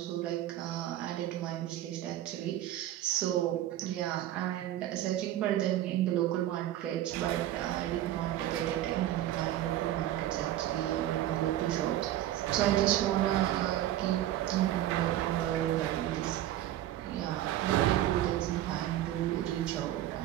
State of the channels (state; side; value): quieter; left; 13.2 dB